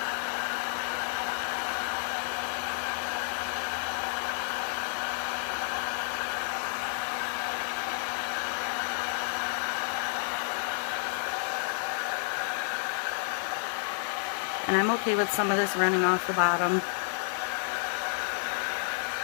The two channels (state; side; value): silent; right; digital silence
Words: And I'm okay with some of this running off the bottom.